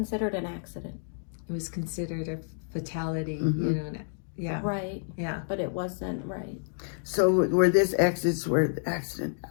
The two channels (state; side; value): silent; right; digital silence